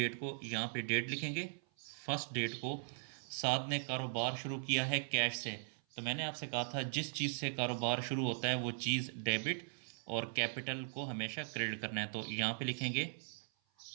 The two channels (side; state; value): left; silent; 52 dB below the other